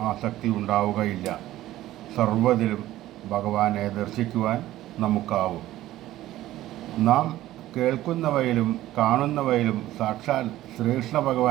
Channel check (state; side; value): quieter; left; 14.8 dB